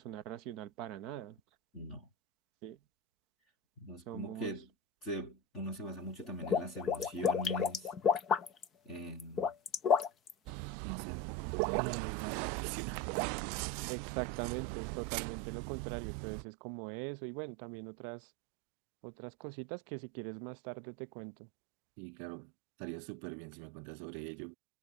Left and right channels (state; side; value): drops out; left; at 10.5 s